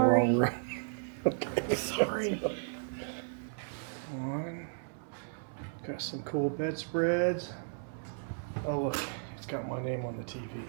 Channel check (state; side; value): silent; left; 55 dB below the other